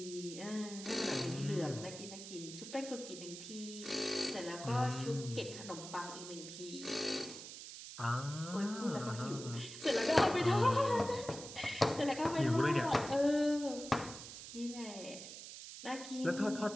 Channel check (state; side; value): noise; right; hiss, 11 dB below the sound